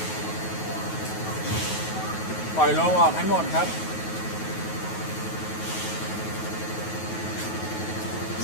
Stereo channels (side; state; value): right; late; 9.3 ms